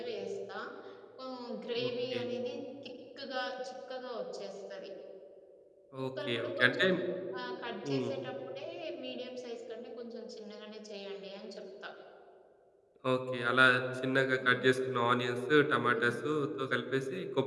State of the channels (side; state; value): both; identical; correlation 1.00